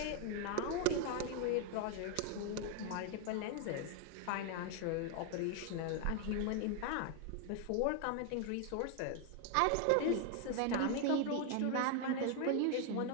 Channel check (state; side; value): different; both; correlation 0.00